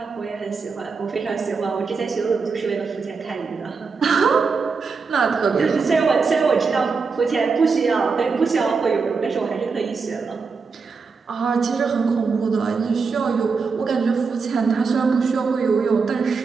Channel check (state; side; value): quieter; left; 4.9 dB